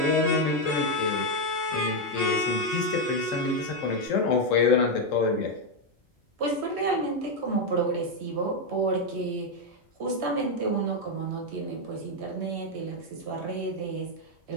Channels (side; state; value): both; normal; correlation 0.03